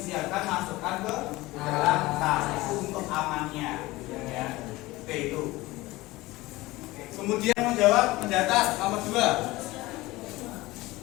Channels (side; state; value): right; quieter; 19.5 dB